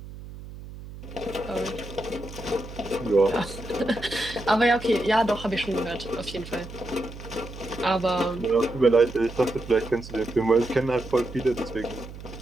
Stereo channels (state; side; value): noise; right; hum, 13 dB below the sound